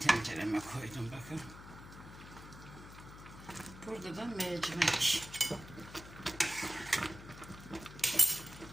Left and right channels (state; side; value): noise; left; hum, 15 dB below the sound